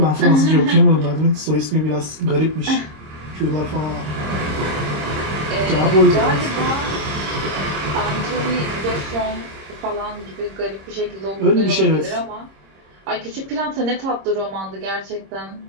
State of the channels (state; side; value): late; left; 26 ms